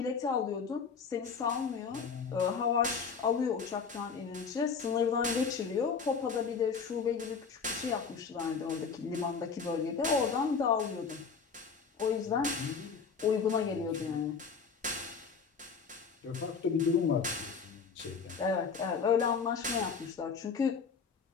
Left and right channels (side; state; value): right; quieter; 5.6 dB